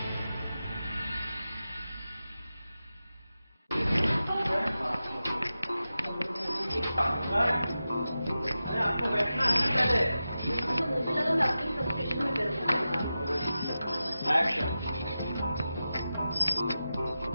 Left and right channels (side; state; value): both; inverted; correlation -0.92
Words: अरे आपको बैठना है ना पहले। तो मुझे लगा मैं अपनी फ्रस्ट्रेशन में कर एक्शन।